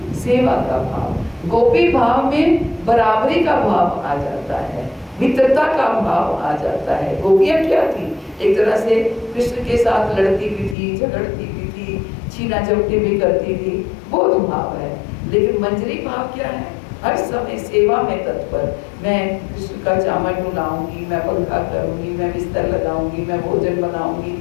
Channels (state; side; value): drops out; right; at 10.8 s